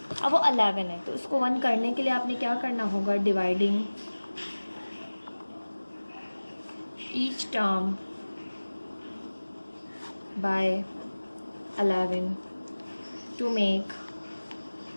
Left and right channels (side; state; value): both; inverted; correlation -1.00